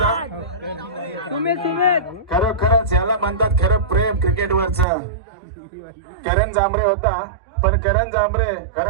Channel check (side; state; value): left; drops out; at 4.9 s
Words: खरोखरच याला म्हणतात खरं प्रेम क्रिकेटवरच करण जांभरे होता पण करण जांभरे